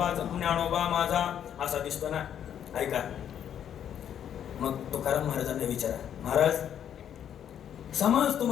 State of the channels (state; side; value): quieter; right; 9.4 dB